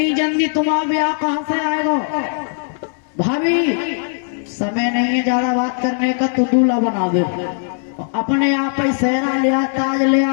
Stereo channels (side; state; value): right; silent; 65 dB below the other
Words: जल्दी तुम्हारा ब्याह कहाँ से आएगा। भाभी समय नहीं है ज्यादा बात करने का, तो दूल्हा बना दे। अपने आप ही सेहरा लिया, ताज